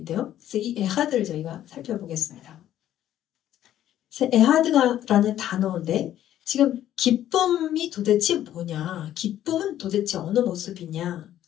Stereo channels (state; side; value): quieter; right; 11.9 dB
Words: 돼요. 그래서 이 에하드를 저희가 살펴보겠습니다. 그래서 에하드라는 단어인데 지금 기쁨이 도대체 뭐냐, 기쁨은 도대체 어느